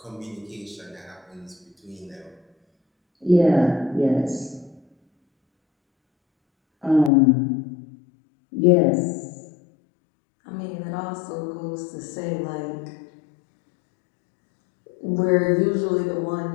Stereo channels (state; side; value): drops out; right; at 7.1 s